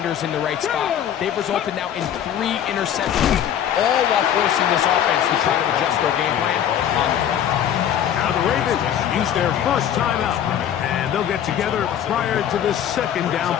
in the right spot. They've resulted now in 3 interceptions, all while forcing this offense to try to adjust their game plan on the fly. Now the Ravens use their first timeout, and they'll get together prior to the second down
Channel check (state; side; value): quieter; right; 9.9 dB